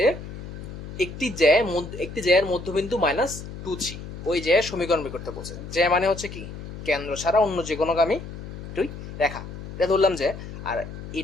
একটি জ্যায়ের মধ্যবিন্দু মাইনাস 2 3, ওই জ্যায়ের সমীকরণ বের করতে বলছে। জ্যা মানে হচ্ছে কি কেন্দ্র ছাড়া অন্য যে কোনো গামী দুই রেখা, এটা ধরলাম যে, আর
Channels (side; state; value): left; noise; hum, 10 dB below the sound